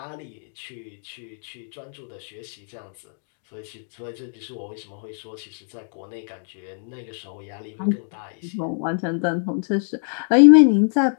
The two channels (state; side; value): silent; right; 63 dB below the other